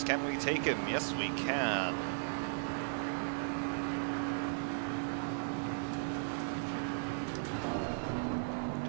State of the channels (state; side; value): silent; left; digital silence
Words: Can we take him? Yes, we can.